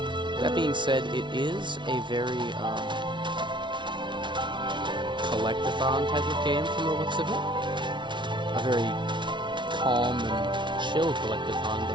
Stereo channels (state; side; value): late; left; 0.23 ms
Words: That being said, it is a very collectathon type of game from the looks of it. A very calm and chill collectathon,